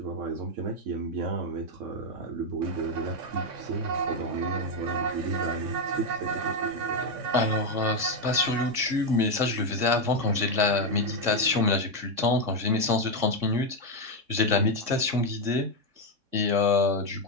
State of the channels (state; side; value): late; left; 3.6 ms